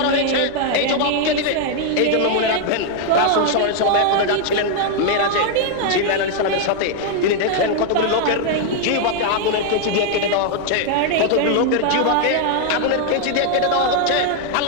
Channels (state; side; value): different; both; correlation 0.00